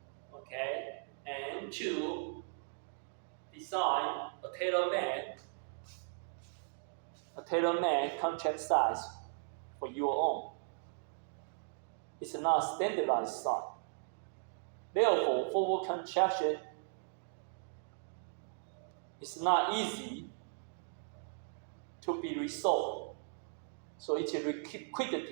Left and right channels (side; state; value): left; silent; digital silence